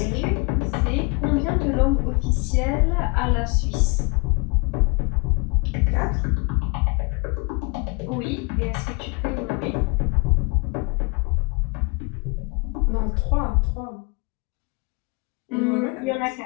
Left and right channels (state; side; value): quieter; right; 30.2 dB